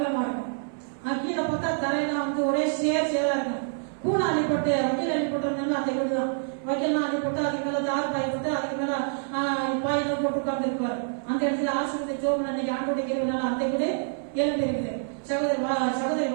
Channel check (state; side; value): silent; left; 60 dB below the other